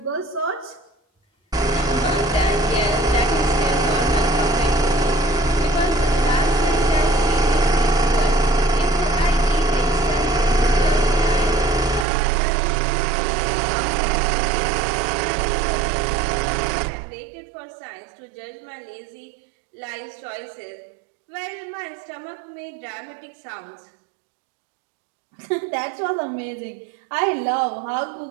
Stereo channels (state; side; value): drops out; left; at 12.1 s